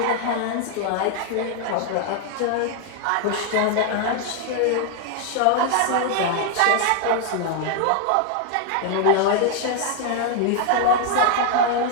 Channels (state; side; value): different; both; correlation 0.00